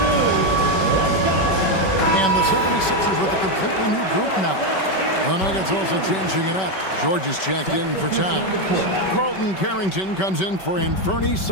And the 76ers with a completely new group now. The Nuggets also changing it up. George is checked in for Towns. Carlton Carrington comes in for Anthony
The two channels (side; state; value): right; late; 5.2 ms